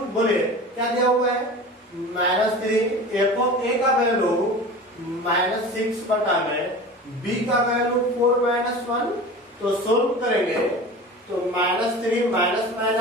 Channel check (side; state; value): both; normal; correlation 0.35